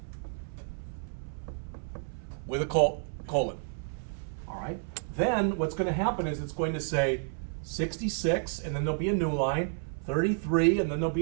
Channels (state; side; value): silent; left; 57 dB below the other